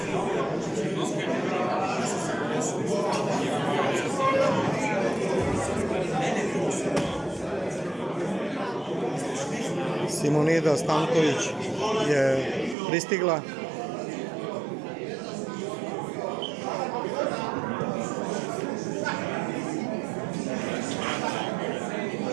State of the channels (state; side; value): drops out; left; at 12.8 s